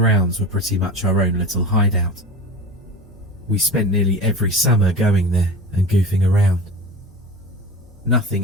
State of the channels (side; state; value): both; normal; correlation 0.32